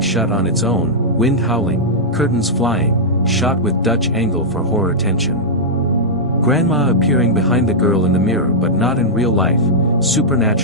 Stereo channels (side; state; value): right; noise; rumble, 23 dB below the sound